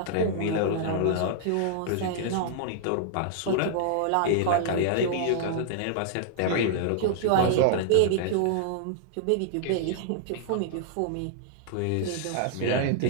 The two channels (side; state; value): both; different; correlation -0.01